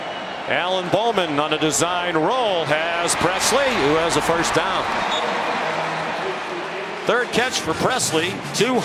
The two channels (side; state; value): both; identical; correlation 1.00